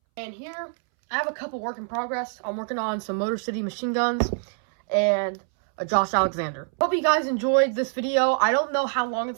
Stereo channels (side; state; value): left; silent; 62 dB below the other